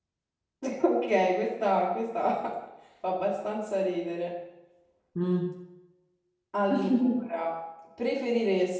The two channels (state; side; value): identical; both; correlation 1.00